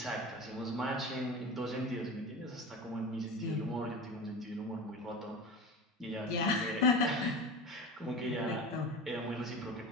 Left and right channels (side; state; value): both; normal; correlation 0.30